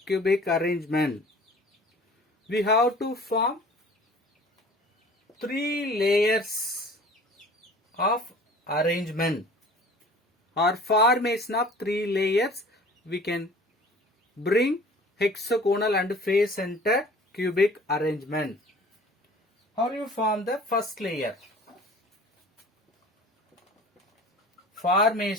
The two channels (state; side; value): normal; both; correlation 0.46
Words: cubic arrangement? We have to form 3 layers of arrangement or formation of 3 layers. We can bring hexagonal and face center cubic arrangement. How you form the first layer?